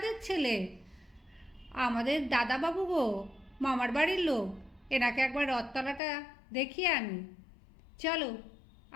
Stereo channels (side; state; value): right; drops out; at 6.0 s